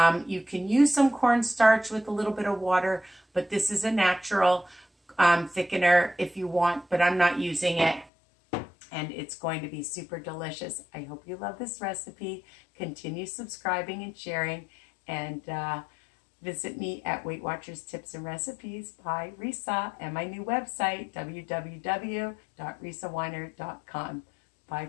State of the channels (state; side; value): drops out; right; at 8.1 s